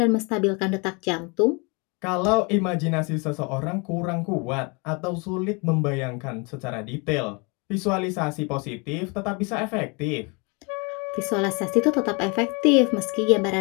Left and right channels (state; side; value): quieter; right; 31.0 dB